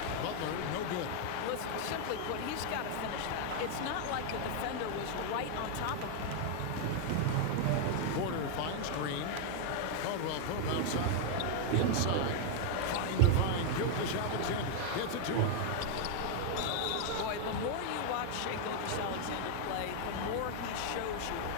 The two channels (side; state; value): both; different; correlation 0.00